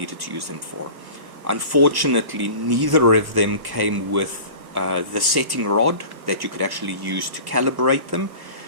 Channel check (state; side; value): late; left; 1.2 ms